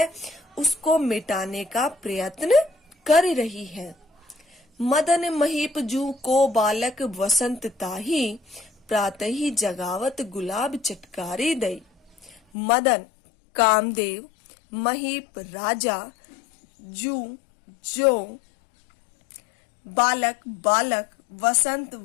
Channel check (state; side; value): drops out; right; at 12.4 s